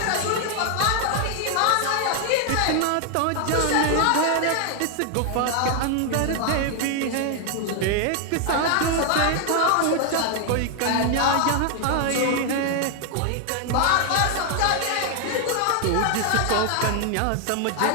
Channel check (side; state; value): both; different; correlation 0.00